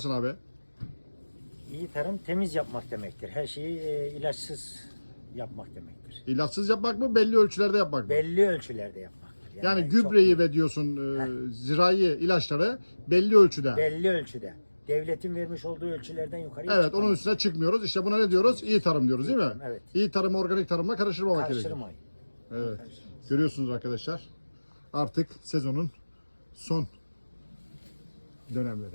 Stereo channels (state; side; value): inverted; both; correlation -1.00